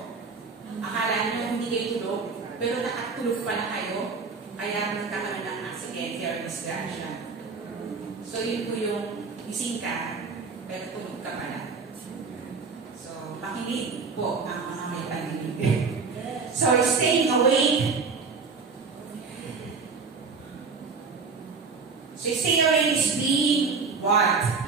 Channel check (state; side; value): quieter; left; 4.8 dB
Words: akala nyo hindi kayo tulog, pero nakatulog pala kayo. Kaya nagkakaroon ng aksidente or disgrasya. So, yun po yung gising ka, pero tulog ka pala. So, makinig po ang mga may paninig. So, staying awake. So, staying awake is being what?